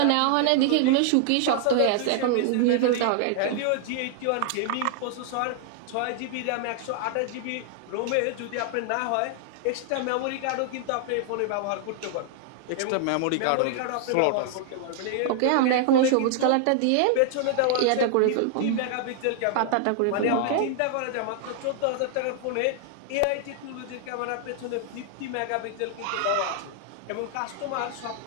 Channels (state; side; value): different; both; correlation 0.00